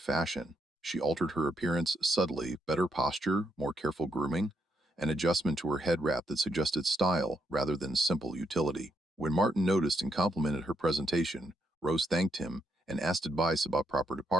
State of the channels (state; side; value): normal; both; correlation 0.79